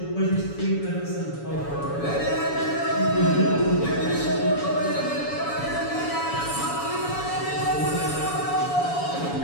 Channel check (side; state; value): right; late; 7.0 ms